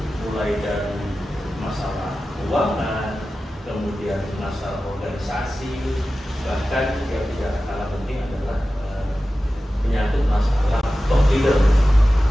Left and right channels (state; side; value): normal; both; correlation 0.94